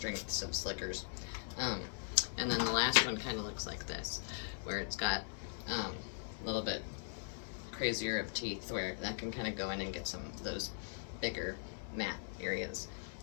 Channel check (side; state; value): right; silent; 51 dB below the other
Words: of slickers. And then the last one kind of looks like this, where it's got a little bit crazier of teeth, where that can kind of go in and get some of those bigger matte areas.